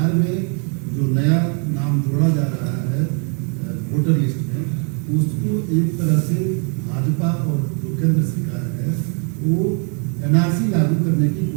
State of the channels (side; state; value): left; quieter; 39.2 dB